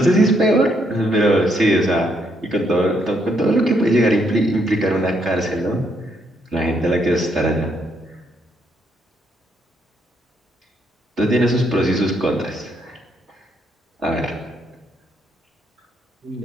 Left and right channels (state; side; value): normal; both; correlation 0.74